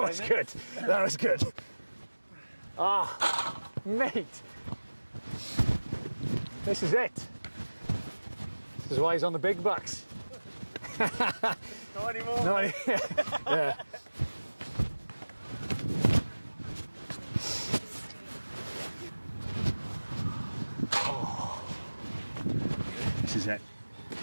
was good. That was good. Ah, mate. This is it. This is why he's on the big bucks. Not anymore. No, yeah. Oh, this is it.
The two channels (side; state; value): both; inverted; correlation -1.00